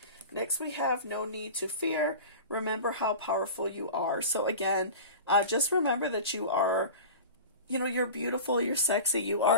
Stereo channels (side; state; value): both; inverted; correlation -0.34